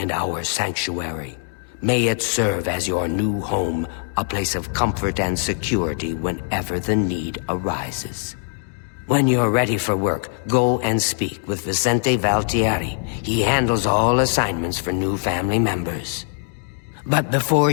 our sanctuary. May it serve as your new home, a place of comfort and security whenever the need arises. When you're ready for work, go and speak with Vicente Valtieri. He handles all assignments for new family members. But before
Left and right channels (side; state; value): right; silent; digital silence